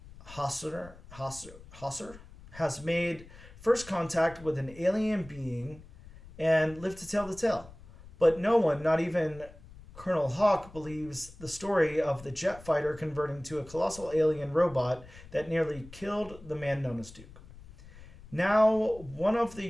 Hosser has made first contact with an alien being and lived to tell the tale. But no one, not even Colonel Hawk, believes the story of the jet fighter converting to a colossal alien robot that nearly killed the man known as Duke. Now, one of the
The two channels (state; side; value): noise; left; rumble, 19 dB below the sound